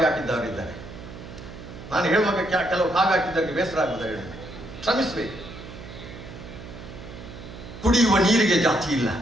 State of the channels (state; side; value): noise; right; hum, 13 dB below the sound